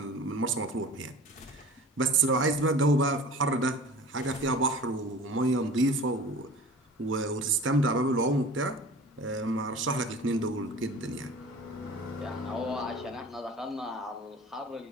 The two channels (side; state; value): both; normal; correlation 0.41